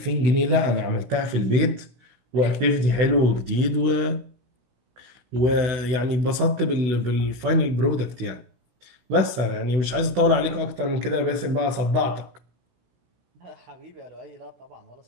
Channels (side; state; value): left; late; 16 ms